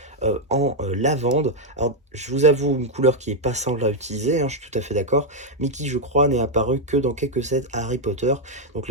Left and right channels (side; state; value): both; normal; correlation 0.00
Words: en lavande. Alors je vous avoue une couleur qui est pas simple à utiliser, hein, je suis tout à fait d'accord, mais qui je crois n'est apparu que dans quelques sets Harry Potter. Donc